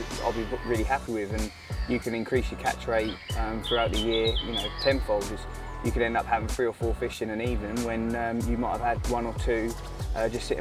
I'll be really happy with, and you can increase your catch rate throughout the year, you know, tenfold. You could end up having 3 or 4 fish in an evening when you might have had 1 or 2 just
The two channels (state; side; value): identical; both; correlation 1.00